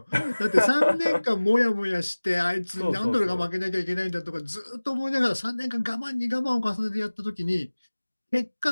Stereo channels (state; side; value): inverted; both; correlation -1.00